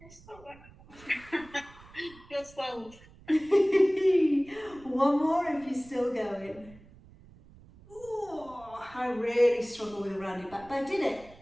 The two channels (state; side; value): noise; right; rumble, 23 dB below the sound